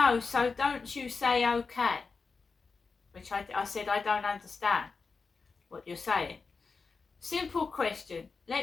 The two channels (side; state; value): right; quieter; 4.7 dB